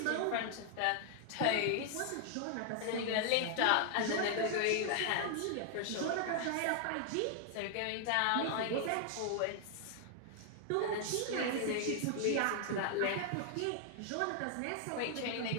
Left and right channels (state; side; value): different; both; correlation 0.00